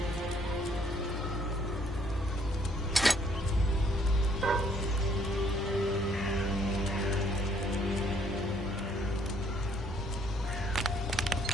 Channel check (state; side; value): normal; both; correlation 0.66